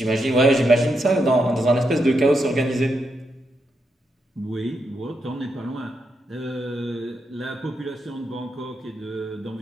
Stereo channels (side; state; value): both; normal; correlation 0.82